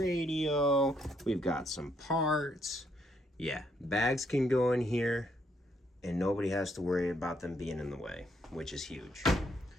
We've got some parts. Yeah, bags can go in here and nobody has to worry about them being in the way, which is huge.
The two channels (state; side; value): normal; both; correlation 0.73